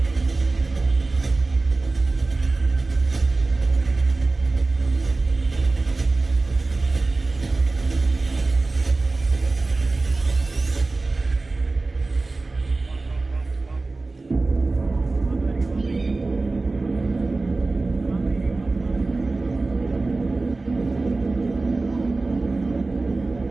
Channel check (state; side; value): quieter; left; 3.4 dB